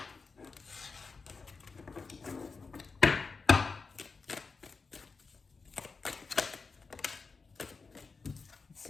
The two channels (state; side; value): quieter; right; 4.6 dB